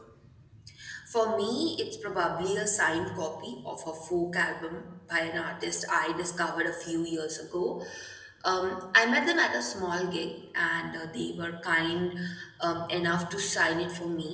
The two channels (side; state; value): both; identical; correlation 1.00